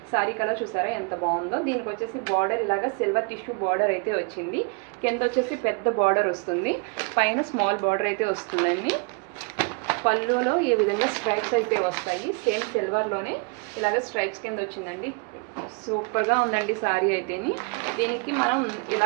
colour చూసారా ఎంత బాగుందో. దీనికి వచ్చేసి బార్డర్ ఇలాగా సిల్వర్ టిష్యూ బార్డర్ అయితే వచ్చింది. కింద వచ్చేసి పెద్ద బార్డర్ వస్తుంది, పైన స్మాల్ బార్డర్ అయితే వస్తుందండి. పళ్ళులో ఈ విధంగా స్ట్రైప్స్ అయితే వస్తాయి, సేమ్ సిల్వర్లోనే ఇలాగ స్ట్రైప్స్ కింద వచ్చిందండి. సూపర్గా ఉందండి సారీ అయితేని. దీనికి మనం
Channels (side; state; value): left; quieter; 33.3 dB